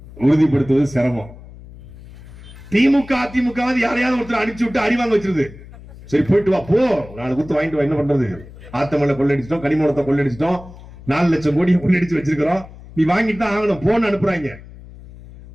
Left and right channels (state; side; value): noise; left; hum, 18 dB below the sound